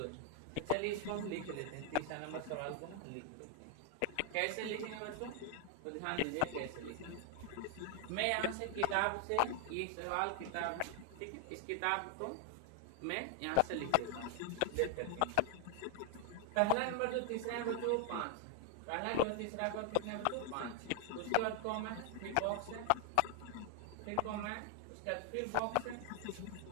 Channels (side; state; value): both; different; correlation 0.00